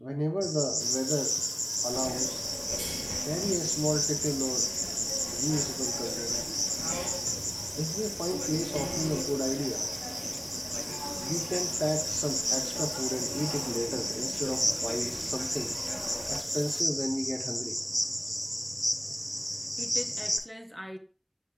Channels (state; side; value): identical; both; correlation 1.00